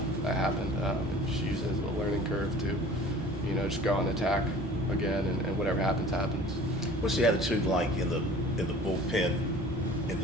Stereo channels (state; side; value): normal; both; correlation 0.46